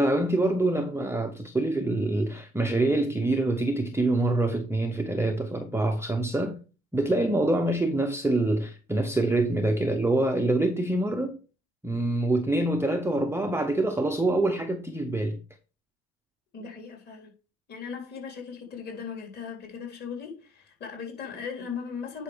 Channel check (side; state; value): both; normal; correlation 0.79